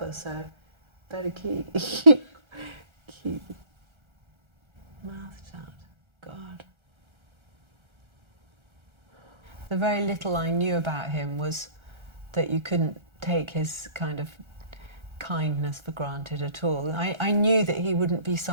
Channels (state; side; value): late; left; 1.3 ms